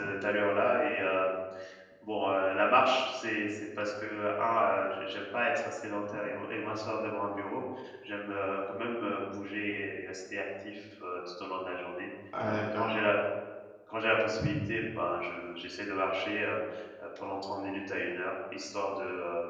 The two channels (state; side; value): identical; both; correlation 1.00